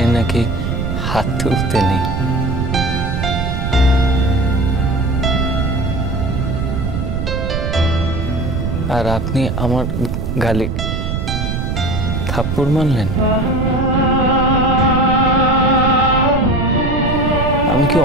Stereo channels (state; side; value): noise; right; rumble, 2 dB below the sound